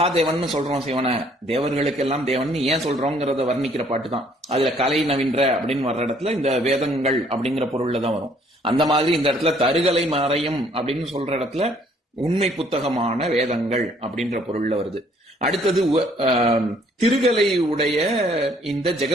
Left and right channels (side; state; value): both; normal; correlation 0.62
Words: சொல்றோம், சிவனை தேவர்களுக்கெல்லாம் தேவன் ஏன் சொல்றோங்கிறத வர்ணிக்கிற பாட்டு தான். அதுல கலை நவின்ற அப்படின்னு வர்ற இடத்துல இந்த வேதங்கள் அப்படிங்கிற பொருள்ல தான் வரும். அந்த மாதிரி இந்த இடத்துல தருகலை மறையும் அப்படின்னு சொல்ற இடத்துல உண்மை புத்தகமான வேதங்கள் அப்படின்ற பொருள்ல வருது. அடுத்தது திருகலை உடைய இந்த